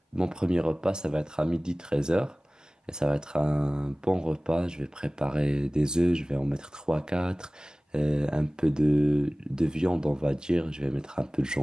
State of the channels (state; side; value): normal; both; correlation 0.98